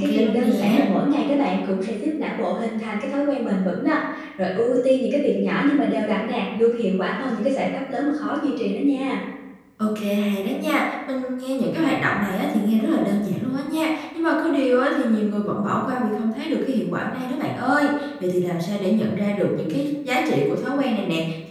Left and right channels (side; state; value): both; identical; correlation 1.00